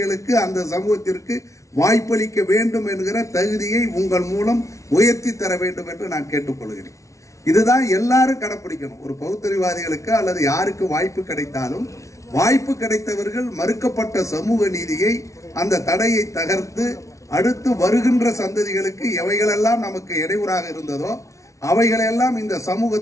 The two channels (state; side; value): late; right; 0.15 ms